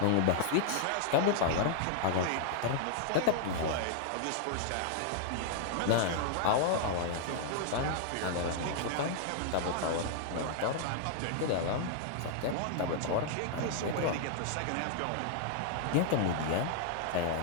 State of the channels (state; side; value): different; both; correlation 0.00